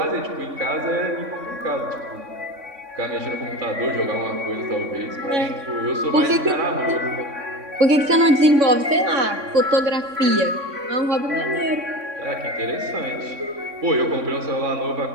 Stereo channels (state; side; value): late; left; 3.6 ms